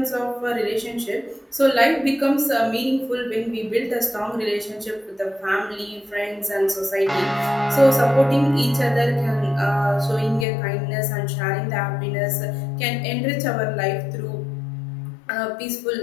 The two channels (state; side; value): drops out; right; at 10.5 s